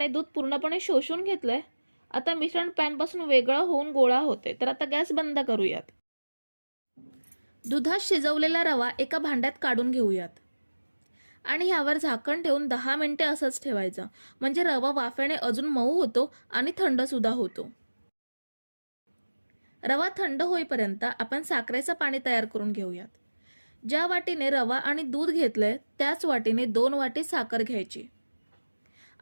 दूध पूर्णपणे शोषून घेतलंय। आता मिश्रण पॅनपासून वेगळं होऊन गोळा होते, तर आता गॅस बंद करूयात। दुधात शिजवलेला रवा एका भांड्यात काढून घेऊयात आणि ह्यावर झाकण ठेवून 10 मिनिटे असंच ठेवायचं, म्हणजे रवा वाफेने अजून मऊ होतो आणि थंड सुद्धा होतो। रवा थंड होईपर्यंत आपण साखरेचं पाणी तयार करून घेऊयात। ज्या वाटीने रवा आणि दूध घेतलंय त्याच वाटीने 2 वाटी साखर घ्यायची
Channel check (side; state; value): both; inverted; correlation -1.00